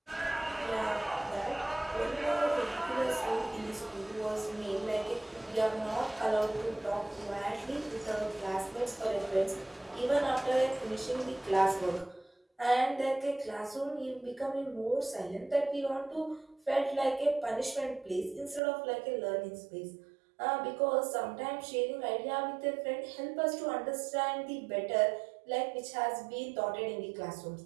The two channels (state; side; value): drops out; left; at 18.6 s